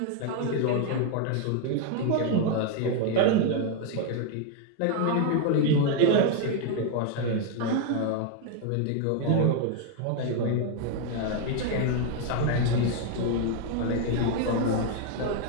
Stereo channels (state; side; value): different; both; correlation 0.01